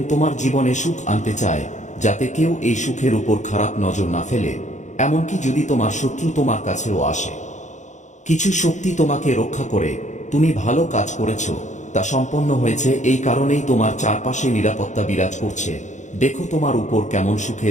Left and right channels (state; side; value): late; right; 0.35 ms